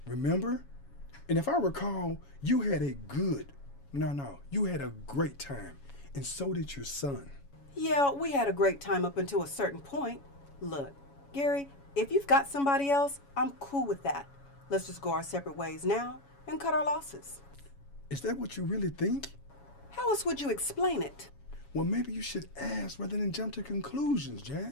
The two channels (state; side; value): late; right; 7.2 ms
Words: remember? And if I recall, you had a you had a great time. And so did your son. Yeah, we had a great time up until a certain point. Look, Gary, if you've got somebody else, I'm cool with that. Let's just go our separate ways now and cut our losses. Is that what you really think? How else would you explain it? Well, maybe you should ask rather than jump to conclusions,